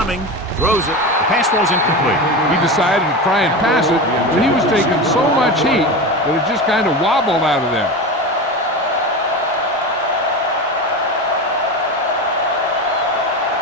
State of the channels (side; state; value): both; normal; correlation 0.24